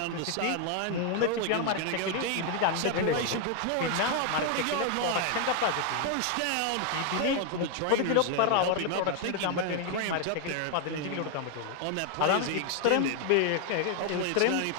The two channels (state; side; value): different; both; correlation 0.00